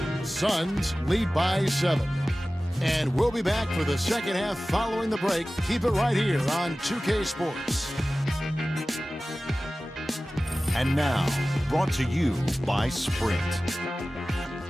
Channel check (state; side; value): normal; both; correlation 0.97